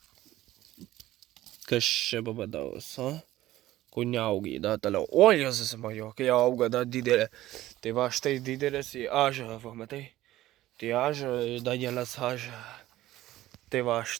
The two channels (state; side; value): quieter; left; 15.4 dB